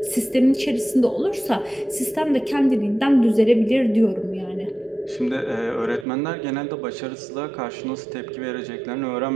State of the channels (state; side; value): drops out; left; at 6.1 s